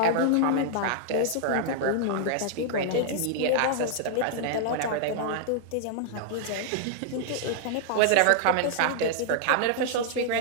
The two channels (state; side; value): different; both; correlation -0.01